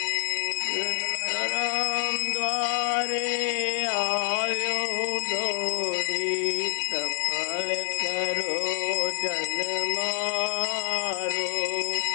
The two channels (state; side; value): silent; right; digital silence